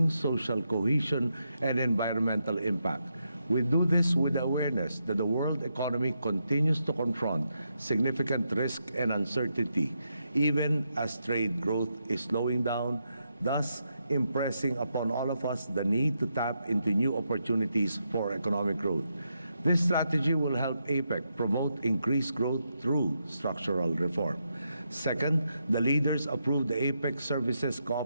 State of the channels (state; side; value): inverted; both; correlation -0.82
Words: social cohesion, and environmental impact. We do this with the awareness that the world economy continues to confront significant risk and uncertainty, even as trade growth is slowing down, thus impressing upon all of us the need to tap into new opportunities for economic growth. This strategy will help APEC promote increased growth through structural reform. Second, the leaders approved the APEC Services